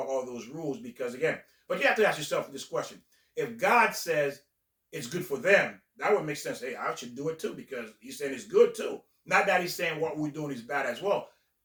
all those rules, because again, but you have to ask yourself this question: if God says it's good for them, that would make sense. Hey, I should do it too, because He's saying it's good too. Not that He's saying what we're doing is bad as well.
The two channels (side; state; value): both; identical; correlation 1.00